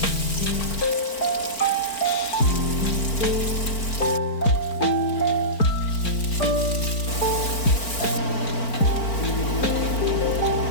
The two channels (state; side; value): late; right; 4.4 ms